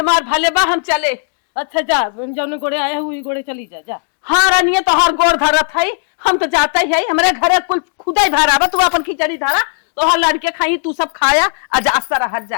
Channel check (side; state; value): right; silent; 68 dB below the other